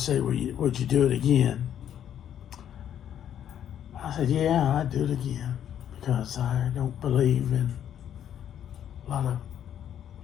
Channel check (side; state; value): right; quieter; 9.9 dB